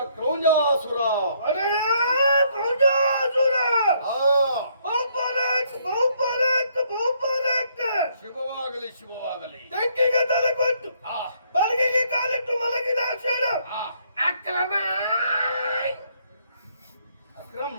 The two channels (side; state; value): both; inverted; correlation -0.69